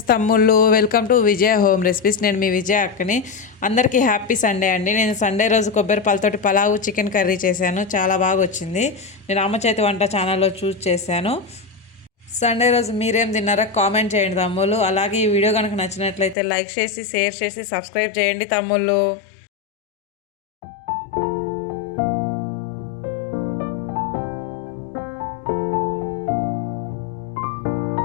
తమ్ముళ్ళు, welcome to Vijaya home recipes. నేను మీ విజయ అక్కని. అందరికీ హ్యాపీ సండే అండి. నేను సండే రోజు కొబ్బరి పాలతోటి పలావు చికెన్ కర్రీ చేశాను. చాలా బాగా వచ్చింది. నేను అమ్మ చేతి వంట ఛానల్లో చూస్ చేశాను. సండే రోజు మీరేం తిన్నారో కామెంట్ చేయండి తమ్ముళ్ళు. అలాగే ఈ వీడియో కనుక నచ్చినట్లయితే లైక్ చేసి, షేర్ చేసి, సబ్స్క్రైబ్ చేయండి తమ్ముళ్ళు.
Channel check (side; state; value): right; drops out; at 16.4 s